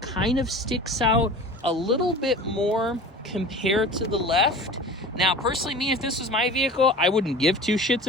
of sticks out a little bit more compared to the left. Now, personally, me, if this was my vehicle, I wouldn't give two shits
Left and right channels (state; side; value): normal; both; correlation 0.38